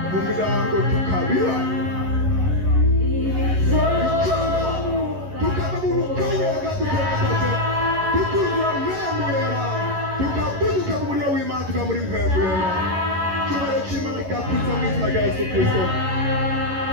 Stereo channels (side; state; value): left; late; 11 ms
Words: mu mirango tukabira tukava mu bukonyega tugaragaze tukuzura mwemuyera tukabuduka mu muriro w'Imana tuka muri mwemuyera cyubahiro cy'Imana kigakuza mu izina rya Yesu Kristo.